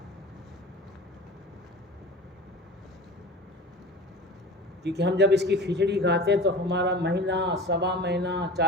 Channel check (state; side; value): normal; both; correlation 0.35